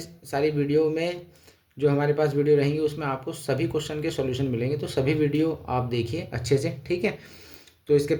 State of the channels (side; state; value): both; identical; correlation 1.00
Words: सारी वीडियो में जो हमारे पास वीडियो रहेंगी उसमें आपको सभी क्वेश्चन के सॉल्यूशन मिलेंगे। तो सभी वीडियो आप देखिए अच्छे से, ठीक है। तो इसके